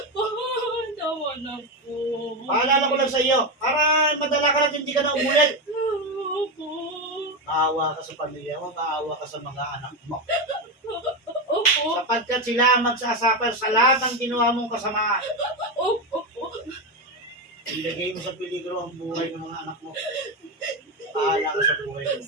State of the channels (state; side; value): normal; both; correlation 0.12